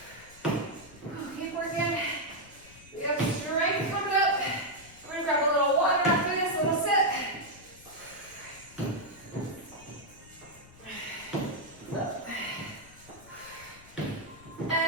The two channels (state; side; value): noise; left; rumble, 22 dB below the sound